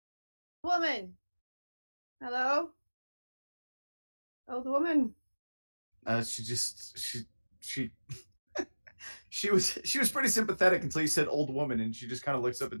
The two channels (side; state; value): both; inverted; correlation -1.00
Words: Woman. Hello? Old woman. She was pretty sympathetic until you said old woman, and she just kind of looks up